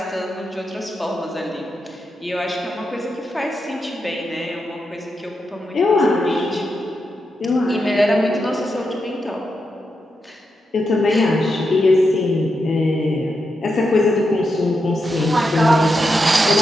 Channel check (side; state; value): both; normal; correlation 0.86